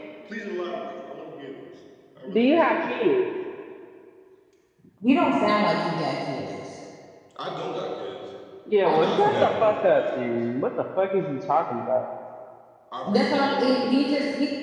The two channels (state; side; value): identical; both; correlation 1.00